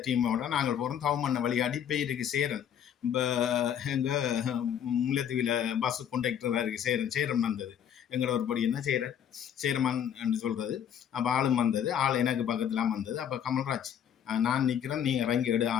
டீமோட நாங்கள் போகிறோம். தவமண்ண வழியாடி பேருக்கு சேரன். இப்போ எங்கள் முல்லைத்தீவில் பஸ்ஸு கொண்டக்டராக இருக்குது சேரன் வந்தது. எங்களோட ஒரு படி என்ன சேரமான் என்று சொல்கிறது. அப்போ ஆளும் வந்தது, ஆள் எனக்கு பக்கத்துலாம் வந்தது. அப்போ கமல்ராஜ் நான் நிற்கிறேன், நீ இறங்கி எடு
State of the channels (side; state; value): right; quieter; 9.1 dB